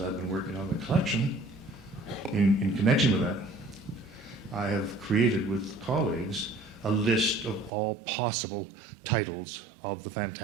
I've been working on the collection, in connection with that, I have created with colleagues a list of all possible titles of the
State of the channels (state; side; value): drops out; left; at 7.7 s